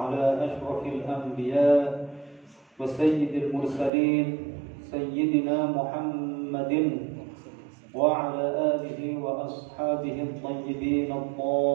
ashrafil anbiya wa sayyidil mursalin sayyidina Muhammadin wa ala alihi wa ashabihi at-tayyibin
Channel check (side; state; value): left; drops out; at 3.9 s